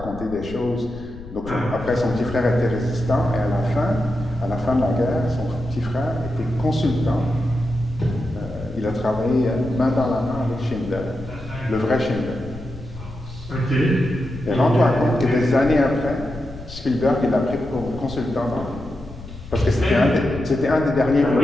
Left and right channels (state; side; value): noise; left; rumble, 14 dB below the sound